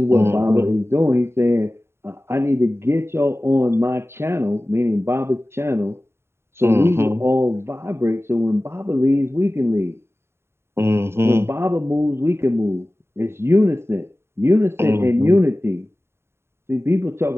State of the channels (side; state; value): left; late; 0.12 ms